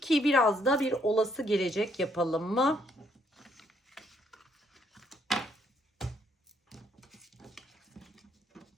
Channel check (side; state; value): both; normal; correlation 0.70